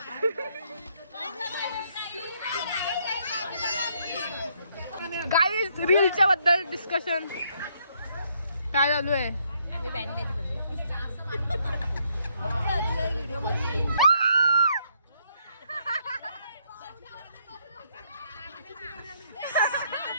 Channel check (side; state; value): both; inverted; correlation -0.71